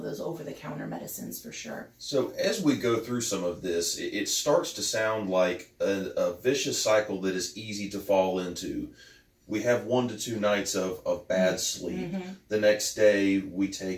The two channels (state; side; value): identical; both; correlation 1.00